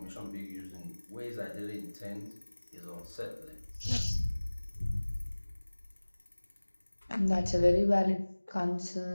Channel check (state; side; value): inverted; both; correlation -1.00